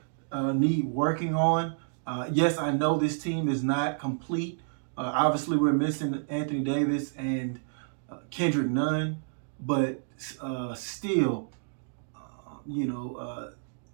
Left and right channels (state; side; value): silent; left; digital silence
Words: need working on. Yes, I know this team is not complete. Obviously, we're missing Anthony Davis and Kendrick Nunn, but still,